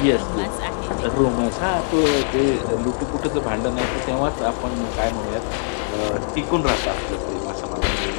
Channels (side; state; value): right; silent; 64 dB below the other